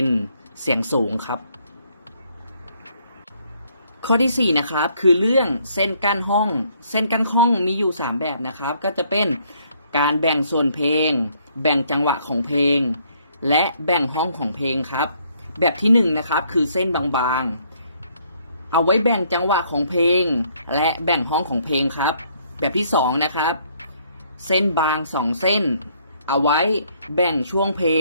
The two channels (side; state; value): both; inverted; correlation -0.67